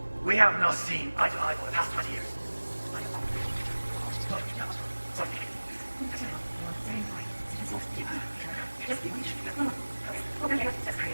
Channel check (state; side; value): inverted; both; correlation -1.00